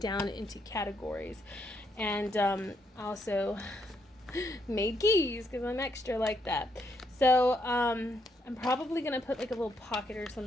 into categories. And also made keys because I'm extra like that. So I'm probably gonna put like a little pocket or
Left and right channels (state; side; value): normal; both; correlation 0.76